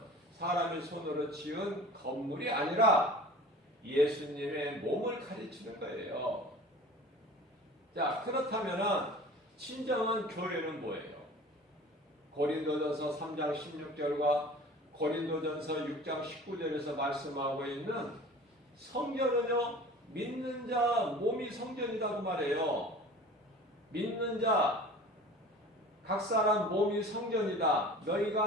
사람의 손으로 지은 건물이 아니라 예수님의 몸을 가르치는 거예요. 자, 그렇다면 진정한 교회는 뭐예요? 고린도전서 3장 16절과 고린도전서 6장 19절에서 말씀하고 있는 성전은요, 믿는 자 몸이 성전이라고 말해요. 믿는 자 각 사람 몸이 성전이다.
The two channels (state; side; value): normal; both; correlation 0.41